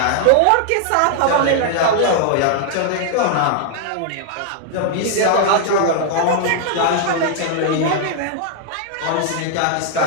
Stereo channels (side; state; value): both; different; correlation -0.01